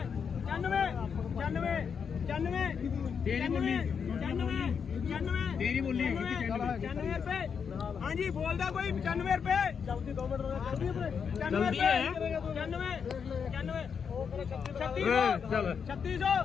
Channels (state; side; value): quieter; right; 6.6 dB